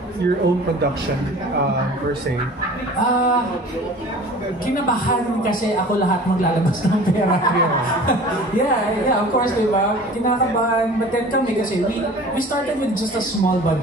your own production per se? Kinabahan kasi ako lahat maglalabas ng pera. yeah, of course, diba? Kinakabahan, but then kami kasi we started with just a small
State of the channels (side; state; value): both; normal; correlation 0.43